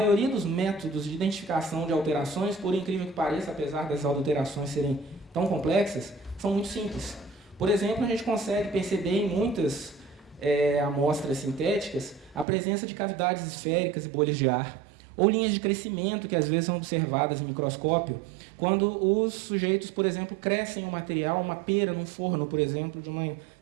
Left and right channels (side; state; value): left; drops out; at 12.5 s